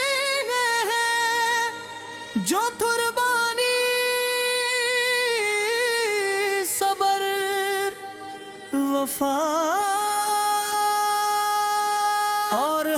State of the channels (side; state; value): both; identical; correlation 1.00